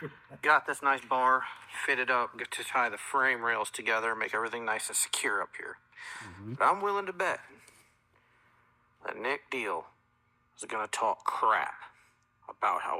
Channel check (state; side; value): identical; both; correlation 1.00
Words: Got this nice bar fitted up, get to tie the frame rails together, make everything nice and secure up here. But I'm willing to bet that Nick Deal is going to talk crap about